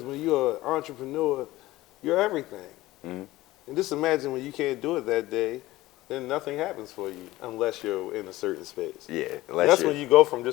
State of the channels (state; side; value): quieter; right; 17.5 dB